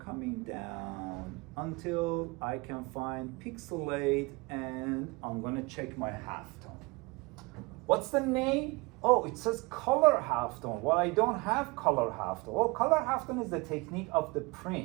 down until I can find pixelate, and I'm gonna check my halftone. What's the name? Oh, it says color halftone. Well, I don't have color halftone. Well, color halftone is the technique of the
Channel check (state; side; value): quieter; left; 25.7 dB